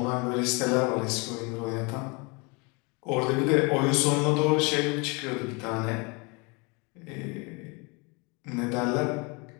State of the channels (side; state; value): right; quieter; 29.7 dB